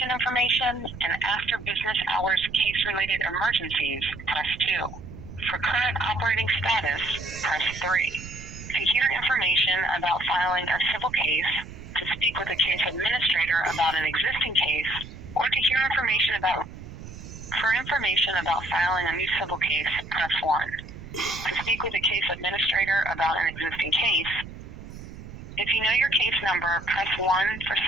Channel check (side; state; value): right; noise; rumble, 13 dB below the sound